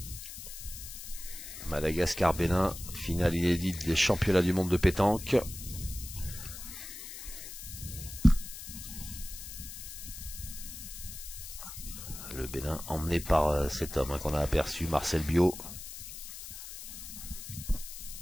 Madagascar-Bénin, finale inédite des championnats du monde de pétanque. Le Bénin emmené par cet homme qu'on a aperçu, Marcel Bio.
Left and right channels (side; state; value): left; noise; hiss, 11 dB below the sound